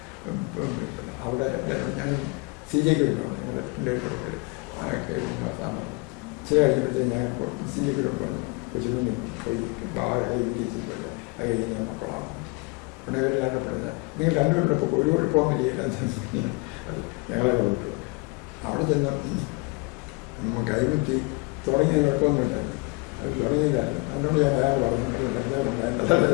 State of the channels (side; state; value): right; quieter; 27.7 dB